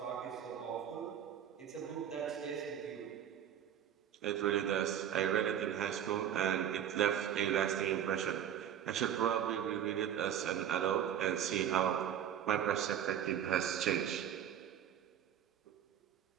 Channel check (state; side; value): quieter; left; 9.6 dB